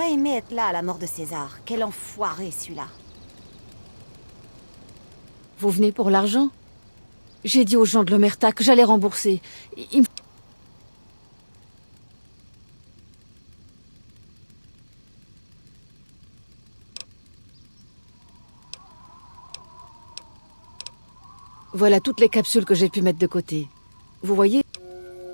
aimé être là à la mort de César. Quel enfoiré, celui-là. Vous venez pour l'argent? J'ai dit aux gens de l'Omerta que j'allais rembourser. Ils me- Voilà toutes les capsules que j'ai pu mettre de côté. Vous voyez?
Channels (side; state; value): both; inverted; correlation -1.00